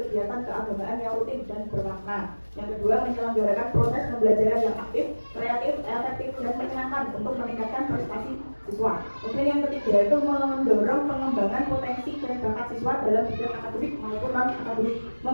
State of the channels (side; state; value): both; inverted; correlation -1.00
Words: keagamaan yang rutin dan bermakna. Yang kedua, menyelenggarakan proses pembelajaran yang aktif, kreatif, efektif, dan menyenangkan untuk meningkatkan prestasi siswa. Kemudian yang ketiga itu mendorong pengembangan potensi dan bakat siswa dalam bidang akademik maupun non-akademik,